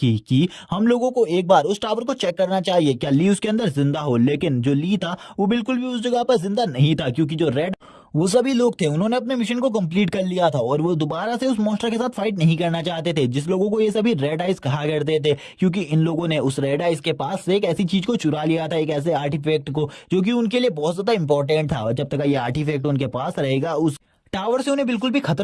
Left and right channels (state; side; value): identical; both; correlation 1.00